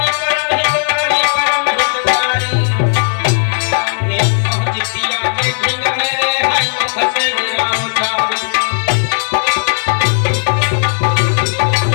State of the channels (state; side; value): silent; right; digital silence